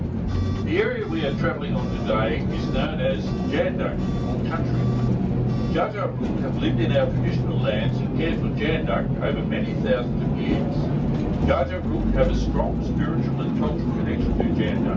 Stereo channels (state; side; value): identical; both; correlation 1.00